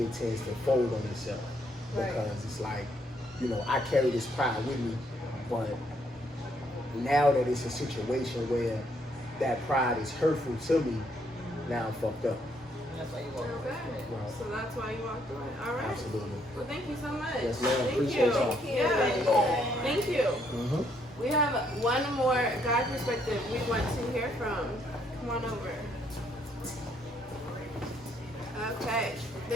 tends to fold on itself. Because it's like, you know, I carry this pride with me, but now that it's a situation where that pride is hurtful to me, now I'm fucked up. That's why you walk away. Okay. So that's why you walked away. All right. Absolutely. Well, thank you so much. Yes, ma'am. Thank Appreciate you. y'all. Yeah. Thank you. Mm-hmm. We have one more guy perspective we want to hear from. Come on over. Okay.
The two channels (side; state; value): both; normal; correlation 0.70